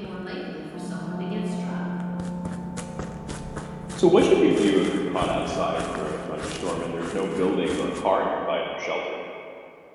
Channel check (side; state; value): both; identical; correlation 1.00